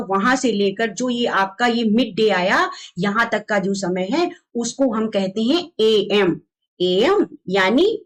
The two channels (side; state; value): both; identical; correlation 1.00